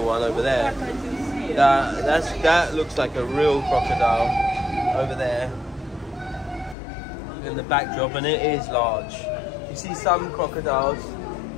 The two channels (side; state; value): right; drops out; at 6.8 s